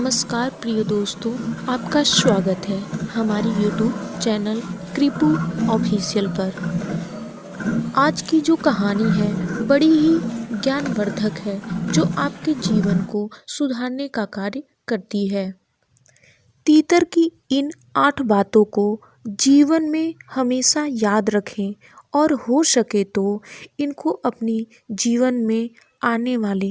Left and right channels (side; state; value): both; identical; correlation 1.00